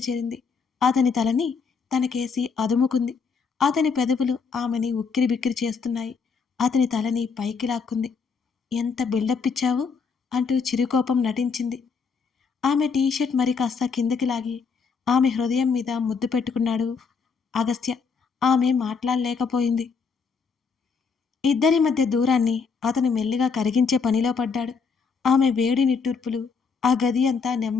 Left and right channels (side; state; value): right; quieter; 5.5 dB